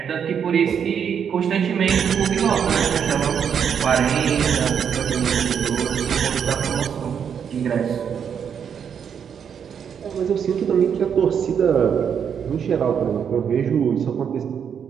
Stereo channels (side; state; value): left; quieter; 7.7 dB